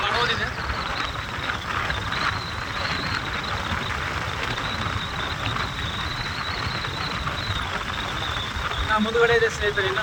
ಮಾಡೋದಿದೆ. ಮುಂದುಗಡೆ ಇದೆ ಸ್ನೇಹಿತರೆ. ಇನ್ನು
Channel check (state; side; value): identical; both; correlation 1.00